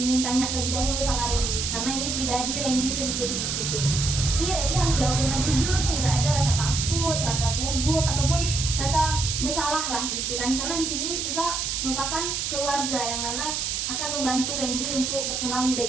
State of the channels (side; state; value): right; noise; hiss, 1 dB below the sound